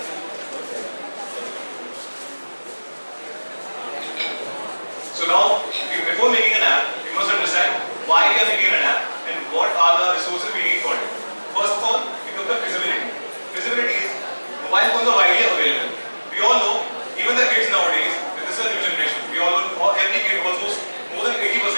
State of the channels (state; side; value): inverted; both; correlation -1.00